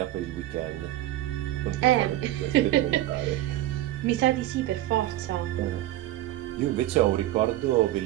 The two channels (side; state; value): left; quieter; 15.0 dB